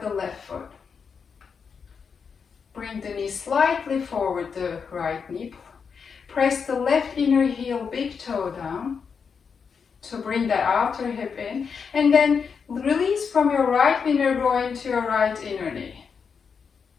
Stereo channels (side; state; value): right; quieter; 6.1 dB